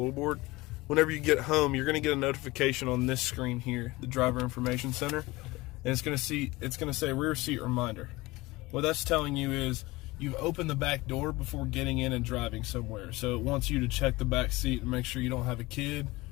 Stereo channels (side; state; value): right; quieter; 21.1 dB